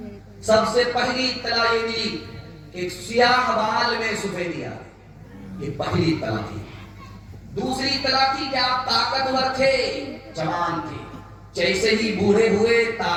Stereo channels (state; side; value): identical; both; correlation 1.00